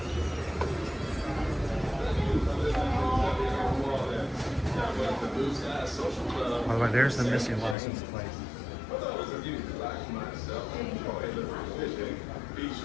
By the way, there's the missing license plate.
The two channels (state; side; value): drops out; right; at 7.8 s